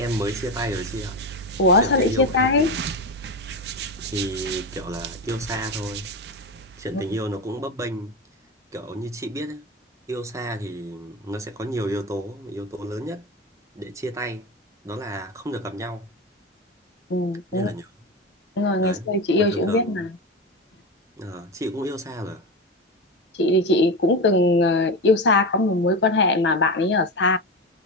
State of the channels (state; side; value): normal; both; correlation 0.20